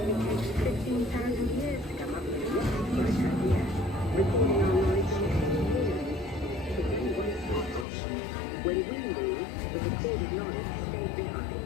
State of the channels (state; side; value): drops out; right; at 7.9 s